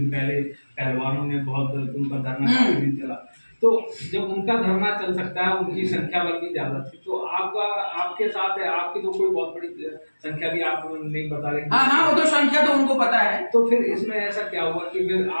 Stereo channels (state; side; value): inverted; both; correlation -1.00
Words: पहले पहलवानों ने बहुत उनका धरना चला। तो जब उनका धरना चल सकता है, उनकी संख्या बल भी ज्यादा थी, तो आपके साथ है, आपकी तो कोई बहुत बड़ी संख्या भी आप नहीं बता रहे। हाँ, वो तो संख्या तो उनको पता है। तो फिर इसमें ऐसा क्या हुआ कि फिर